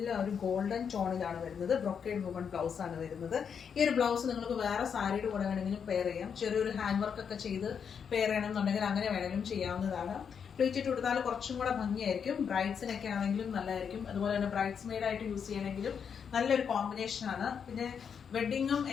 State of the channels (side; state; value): right; quieter; 7.0 dB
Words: ഒരു ഗോൾഡൻ ടോണിലാണ് വരുന്നത്. ബ്രൊക്കേഡ് വുമൺ ബ്ലൗസ് ആണ് വരുന്നത്. ഈ ഒരു ബ്ലൗസ് നിങ്ങൾക്ക് വേറെ സാരിയുടെ കൂടെ വേണമെങ്കിലും പെയർ ചെയ്യാം. ചെറിയൊരു ഹാൻഡ് വർക്ക് ഒക്കെ ചെയ്ത് പെയർ ചെയ്യണമെന്നുണ്ടെങ്കിൽ അങ്ങനെ വേണമെങ്കിലും ചെയ്യാവുന്നതാണ്. പ്ലീറ്റ് കൊടുത്താൽ കുറച്ചും കൂടെ ഭംഗിയായിരിക്കും. ബ്രൈഡ്സിനൊക്കെ ആണെങ്കിലും നല്ലതായിരിക്കും. അതുപോലെ തന്നെ ബ്രൈഡ്സ് മെയ്ഡ് ആയിട്ട് യൂസ് ചെയ്യണമെങ്കിലും നല്ലൊരു കോമ്പിനേഷൻ ആണ്. പിന്നെ വെഡിങ്ങും